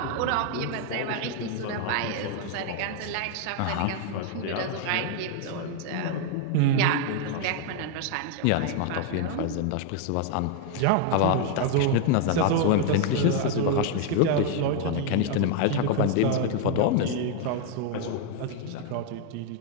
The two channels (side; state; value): both; different; correlation 0.00